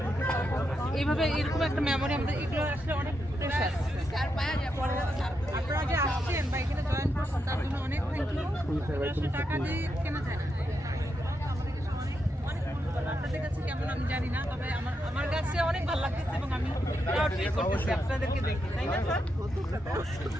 এইভাবে, এরকম একটা মেমোরি আমাদের, এগুলো আসলে অনেক প্রেশাস। আপনারা যে আসছেন বা এখানে জয়েন করছেন তার জন্য অনেক থ্যাংক ইউ। আসলে টাকা দিয়ে কেনা যায় না। আপনাদের কাছে কেমন আমি জানি না, তবে আমার কাছে অনেক ভালো লাগতেছে এবং আমি প্রাউড ফিল করতেছি আপনাদেরকে দেখে, তাই না স্যার?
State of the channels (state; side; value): normal; both; correlation 0.83